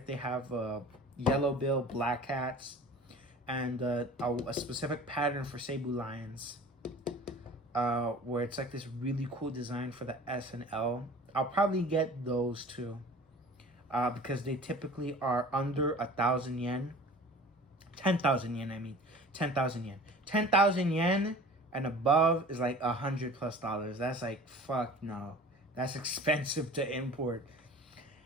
they have yellow bill black hats, and a specific pattern for Cebu Lions, where it's like this really cool design for the S and L. I'll probably get those too, because they typically are under 1,000 yen. 10,000 yen, I mean. 10,000 yen. 10,000 yen and above is like $100+. That's like, fuck no. That's expensive to import.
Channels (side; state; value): both; normal; correlation 0.43